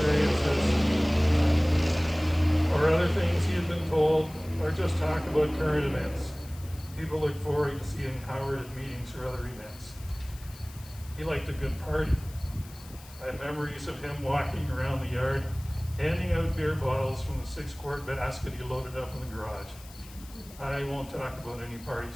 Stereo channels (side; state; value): left; noise; hiss, 20 dB below the sound